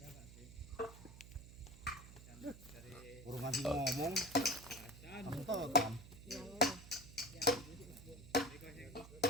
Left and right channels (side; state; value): right; noise; hum, 16 dB below the sound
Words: Urung nganti ngomong. Kamu tahu kan?